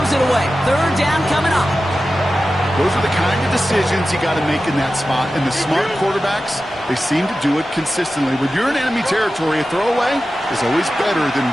it away. Third down coming up. Those are the kind of decisions you got to make in that spot. And the smart quarterbacks, they seem to do it consistently. When you're in enemy territory, a throwaway is always better than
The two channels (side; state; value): both; normal; correlation 0.94